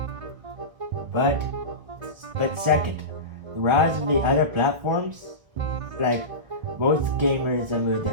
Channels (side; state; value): left; late; 1.3 ms